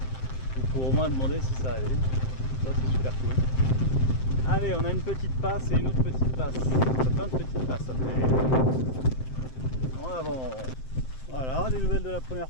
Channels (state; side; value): late; right; 7.7 ms